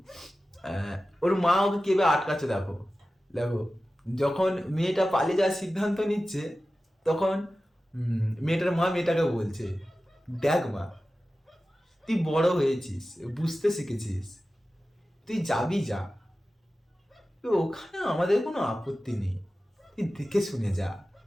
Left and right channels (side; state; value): both; normal; correlation 0.95